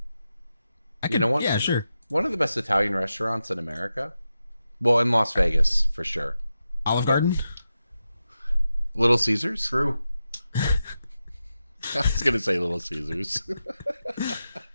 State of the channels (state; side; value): inverted; both; correlation -0.90